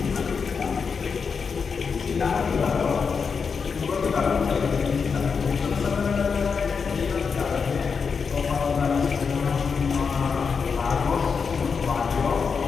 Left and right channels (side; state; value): right; quieter; 5.7 dB